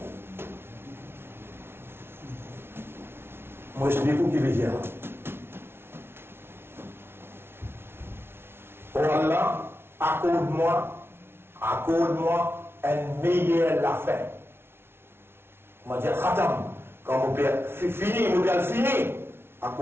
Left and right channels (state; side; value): late; left; 0.12 ms